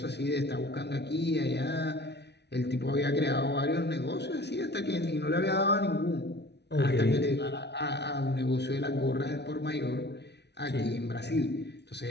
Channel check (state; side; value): late; right; 0.50 ms